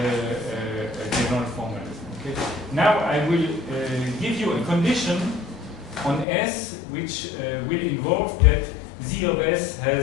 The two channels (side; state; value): right; drops out; at 6.2 s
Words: general formalism. Okay. Now I will give you a condition on S which will involve that Z of S